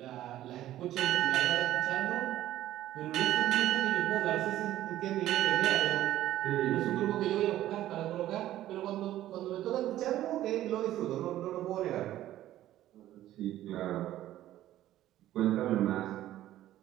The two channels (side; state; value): left; quieter; 13.6 dB